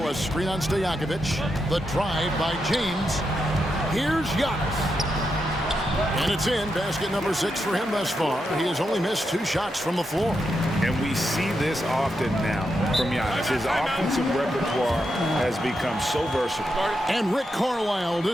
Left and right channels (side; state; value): both; normal; correlation 0.85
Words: a screen on Stojakovic. The drive by James. Here's Giannis. And it's in. Basket number 6 for him thus far. He has only missed 2 shots from the floor. And we see this often now from Giannis. His offensive repertoire has become so versatile. And Rick Carlisle